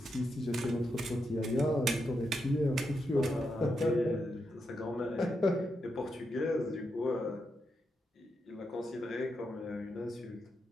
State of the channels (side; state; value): both; normal; correlation 0.84